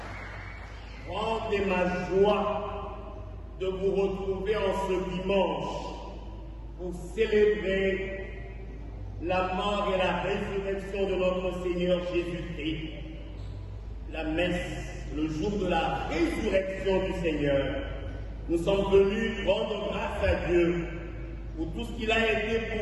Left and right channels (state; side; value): identical; both; correlation 1.00